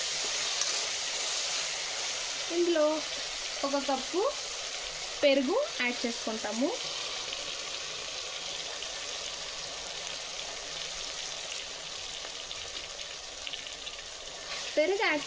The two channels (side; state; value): both; identical; correlation 1.00